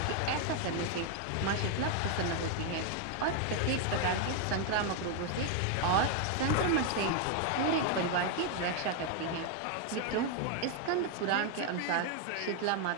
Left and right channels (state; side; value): different; both; correlation 0.00